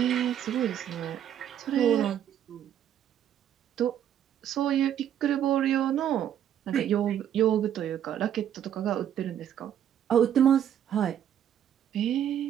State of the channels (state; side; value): quieter; left; 10.1 dB